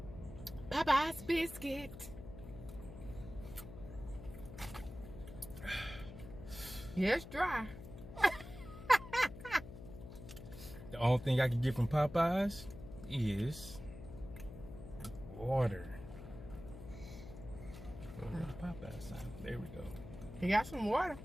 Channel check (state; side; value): noise; left; hum, 13 dB below the sound